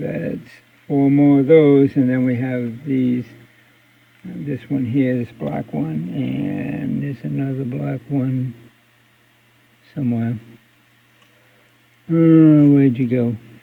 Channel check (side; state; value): both; identical; correlation 1.00